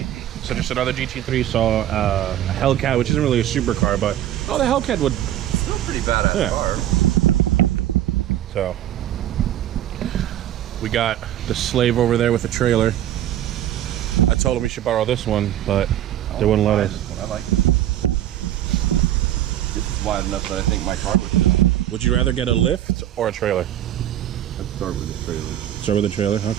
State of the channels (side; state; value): left; quieter; 12.2 dB